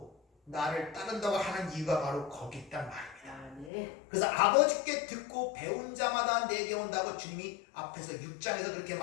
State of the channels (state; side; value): drops out; right; at 3.7 s